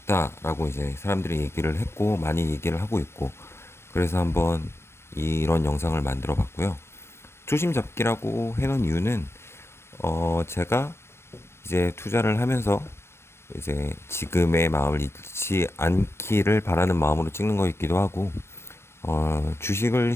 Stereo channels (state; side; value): late; right; 0.12 ms